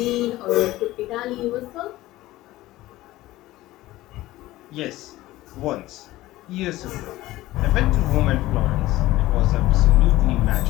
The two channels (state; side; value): quieter; right; 17.0 dB